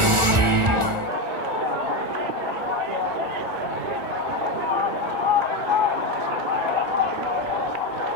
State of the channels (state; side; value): late; left; 1.4 ms